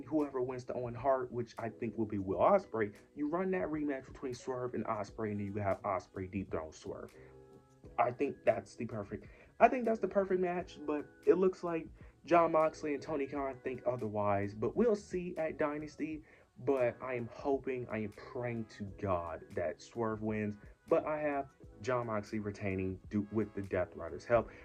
whoever wins the Owen Hart, which I think will be Will Ospreay, you run that rematch between Swerve and Ospreay, and then you have Ospreay dethrone Swerve. I think that's the perfect. I think that's the perfect match, but it looks like Jon Moxley and Tony Khan think otherwise. But we'll see at Dynasty. But I am hoping, I am praying to God that Swerve wins. But I have Jon Moxley retaining with the Death Riders' help.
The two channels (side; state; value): both; identical; correlation 1.00